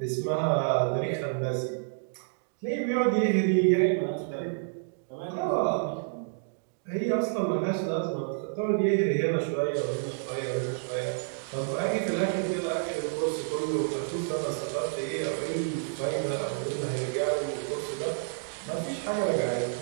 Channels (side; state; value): left; silent; digital silence